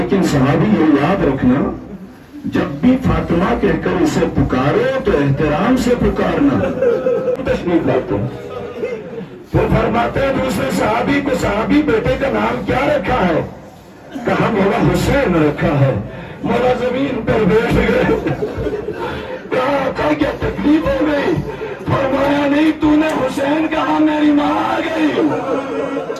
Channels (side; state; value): both; identical; correlation 1.00